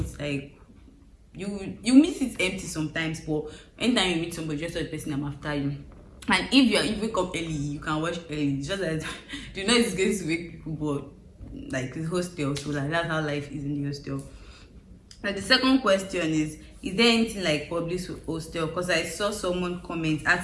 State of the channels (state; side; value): identical; both; correlation 1.00